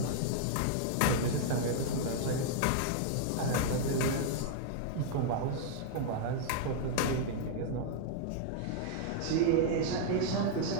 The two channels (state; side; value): different; both; correlation -0.01